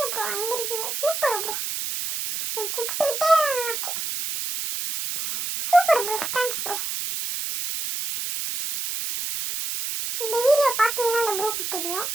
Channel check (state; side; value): noise; right; hiss, 3 dB below the sound